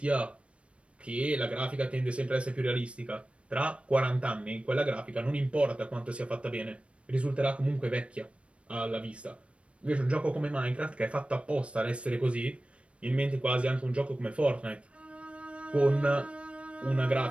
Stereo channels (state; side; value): late; left; 0.061 ms